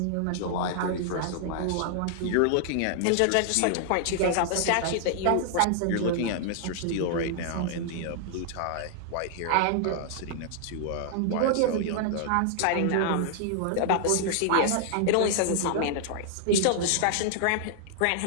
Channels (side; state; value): both; different; correlation -0.01